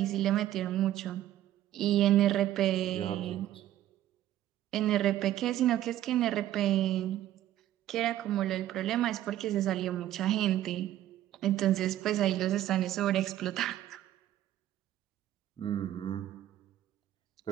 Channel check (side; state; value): left; quieter; 12.9 dB